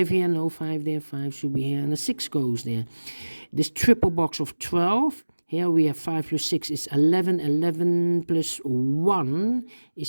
here, no 5 there. 5 should be here, and a 6 goes there. This triple box of 12. Here we have 5 plus 6 is 11. 11 plus 1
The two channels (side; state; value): both; inverted; correlation -1.00